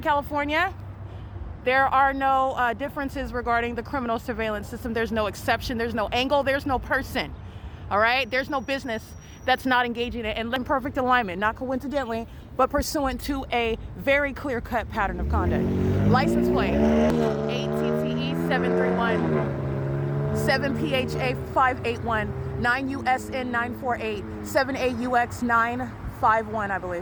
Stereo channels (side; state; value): both; identical; correlation 1.00